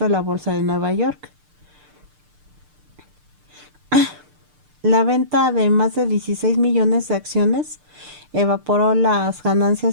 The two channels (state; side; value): late; left; 6.7 ms